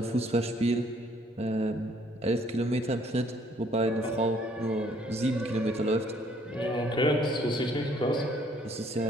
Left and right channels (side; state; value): both; normal; correlation 0.63